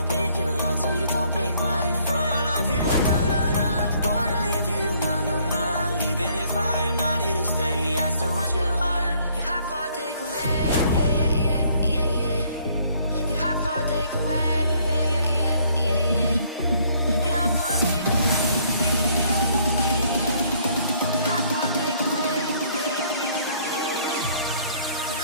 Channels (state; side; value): inverted; both; correlation -0.64